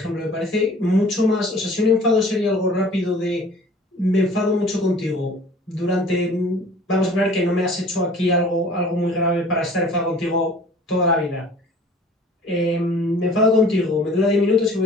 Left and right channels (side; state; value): both; normal; correlation 0.49